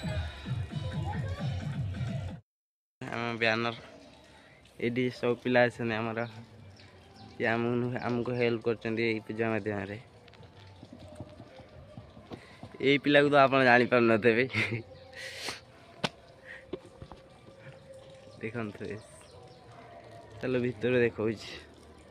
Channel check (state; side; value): identical; both; correlation 1.00